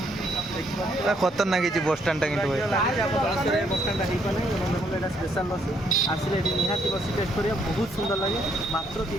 ବସଷ୍ଟାଣ୍ଡ खतरनाक बसस्टाण्डटा कि बसଷ୍ଟାଣ୍ଡଟା ହେଇପାରେ। ଦେଖନ୍ତୁ ଏଇଟା ସ୍ପେଶାଲ ଲସି ଆସିଲେ ଏଠି ନିହାତି ଲସି ଟେଷ୍ଟ କରିବା ବହୁତ ସୁନ୍ଦର ଲାଗେ। ମାତ୍ର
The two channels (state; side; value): normal; both; correlation 0.70